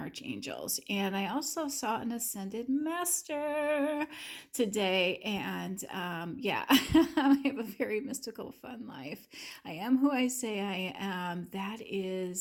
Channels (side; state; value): both; identical; correlation 1.00